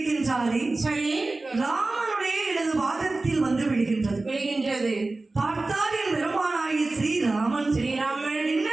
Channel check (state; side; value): quieter; left; 3.2 dB